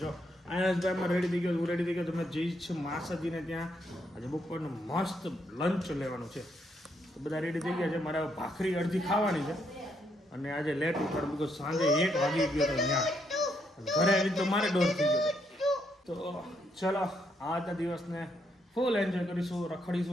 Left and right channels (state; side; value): normal; both; correlation 0.75